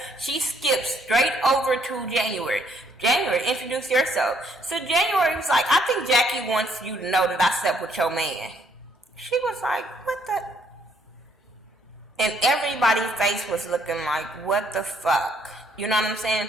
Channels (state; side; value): normal; both; correlation 0.67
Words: she skips straight over to January. January, introduce yourself. So January was like, I think Jackie wants you to know that I slept with your man. She was like, what the? And everybody's face was looking like, what the fuck? You know what I'm